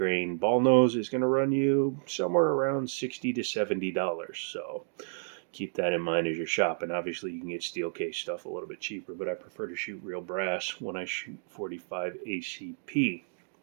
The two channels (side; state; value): left; silent; digital silence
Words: ball nose is going to run you somewhere around $60 to $70. So keep that in mind as you're shopping. Obviously, you can get steel case stuff a little bit cheaper, but I prefer to shoot real brass when I shoot 45 ACP.